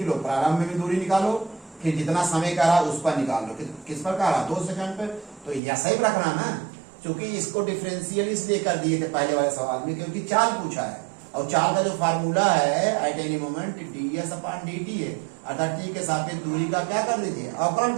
लो, प्रारंभ में भी दूरी निकालो, फिर जितना समय का रहा उस पर निकाल लो, किस पर का रहा 2 सेकंड पर, तो ऐसा ही रखना ना। क्योंकि इसको डिफरेंशियल इसलिए कर दिए थे पहले वाले सवाल में, क्योंकि चाल पूछा है, और चाल का जो फार्मूला है at any moment ds upon dt है, अर्थात t के सापेक्ष दूरी का क्या कर दीजिए, अवकलन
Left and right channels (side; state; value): left; drops out; at 5.6 s